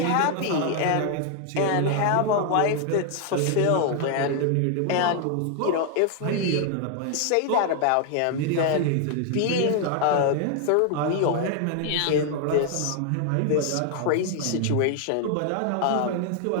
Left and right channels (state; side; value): different; both; correlation 0.00